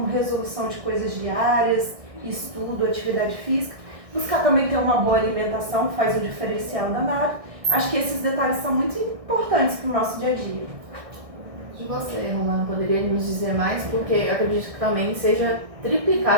resolução de coisas diárias, estudo, atividade física. Buscar também ter uma boa alimentação, faz um diferencial danado. Acho que esses detalhes são muito importantes para o nosso dia a dia. E você, Romana, poderia nos dizer mais? Porque acredito que também seja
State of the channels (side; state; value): left; late; 1.6 ms